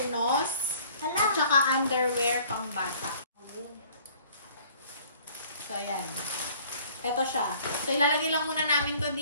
at saka underwear pang bata. So, ayan. Ito siya. So, ilalagay lang muna namin to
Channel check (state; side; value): inverted; both; correlation -0.54